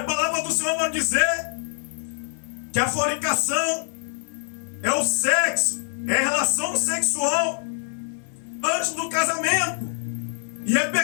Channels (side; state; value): right; silent; 62 dB below the other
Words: palavra do Senhor vai dizer que a fornicação é o sexo, é a relação sexual antes do casamento. E é